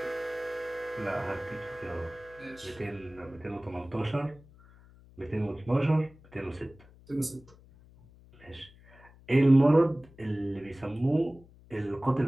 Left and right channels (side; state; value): left; noise; hum, 24 dB below the sound